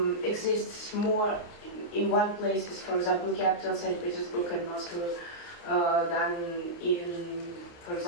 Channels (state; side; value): late; right; 29 ms